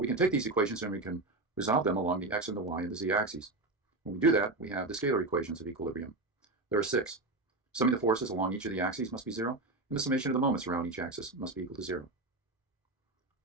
we can take these equations and we can resolve them along the x and the y and the z axes. When we do that, we have the scalar equations of equilibrium. There are six. Summing the forces along each of the axes must be zero, and the summation of the moments around each axis must be equal to zero.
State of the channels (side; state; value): left; quieter; 3.0 dB